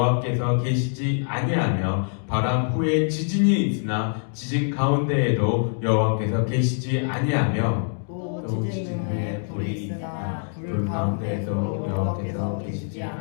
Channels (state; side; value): silent; right; digital silence